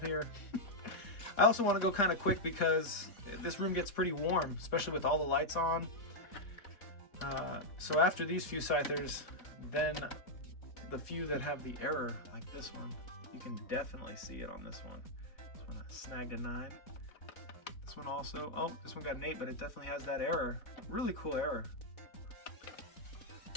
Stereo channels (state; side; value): late; right; 3.6 ms